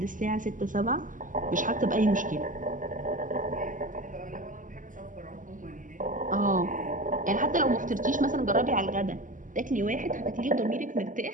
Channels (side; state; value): left; late; 0.38 ms